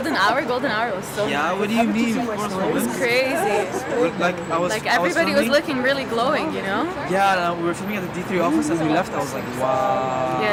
Hour? Golden Hour was so Yeah, good. what do you mean? Of course, It's crazy. Like Everybody was looking really glowing, you know? Yeah, we were filming at the D3 office and we left. I was like, wow.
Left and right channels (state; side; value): identical; both; correlation 1.00